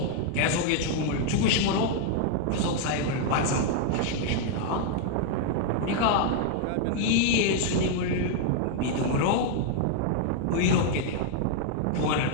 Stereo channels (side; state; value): both; different; correlation 0.00